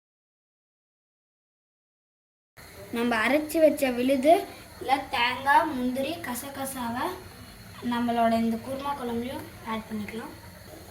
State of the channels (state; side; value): identical; both; correlation 1.00